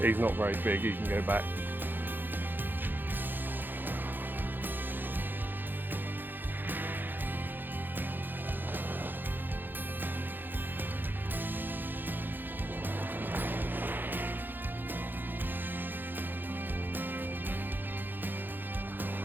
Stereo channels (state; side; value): late; left; 0.092 ms